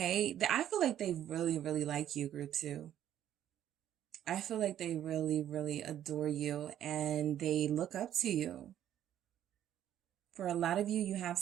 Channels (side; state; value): left; quieter; 11.1 dB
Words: I feel like they really, really like you, group 2. I feel like they really, really adore you and they look up to you. For a lot of you, you have